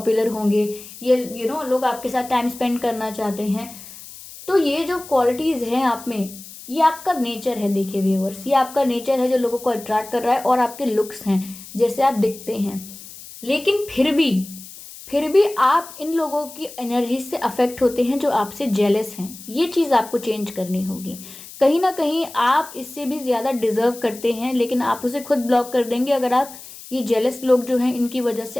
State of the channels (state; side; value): noise; left; hiss, 16 dB below the sound